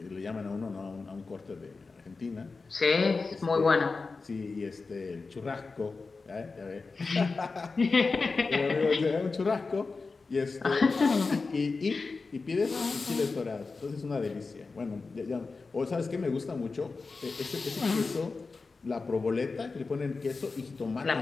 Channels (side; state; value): right; quieter; 4.1 dB